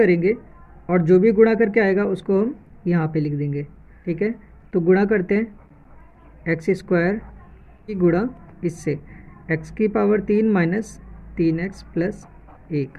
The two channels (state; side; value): identical; both; correlation 1.00